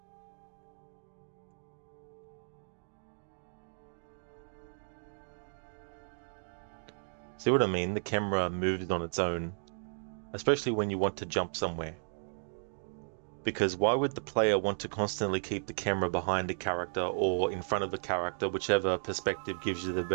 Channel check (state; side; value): silent; left; digital silence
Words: See what I mean? The camera moves on its own, especially when you want to jump somewhere. Because why would the player want to constantly keep the camera behind a character or in front of a character, whichever perspective gives you the